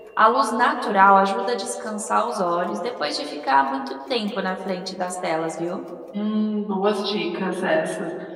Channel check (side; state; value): both; identical; correlation 1.00